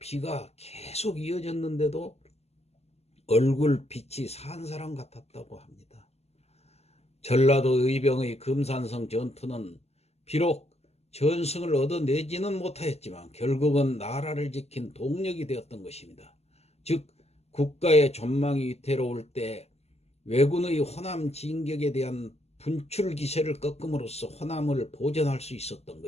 계속 이어졌는데도 얼굴 빛이 산 사람 같았다고 합니다. 전라도 의병의 금산성 전투는 비록 전승을 얻어내지는 못하였지만 결국은 나라를 지킨 동력이 되었던 것입니다. 즉 국가의 전망이 위태로울 때 왜군의 호남 진격에 대한 분출 기세를 꺾음으로써 호남을 보전할 수 있었던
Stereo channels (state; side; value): late; right; 0.30 ms